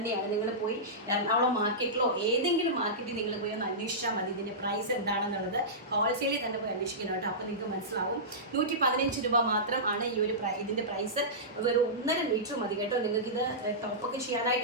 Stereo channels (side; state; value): both; normal; correlation -0.16